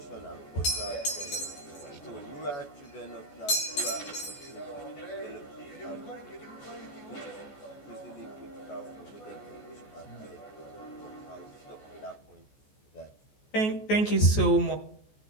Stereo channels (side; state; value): right; late; 14 ms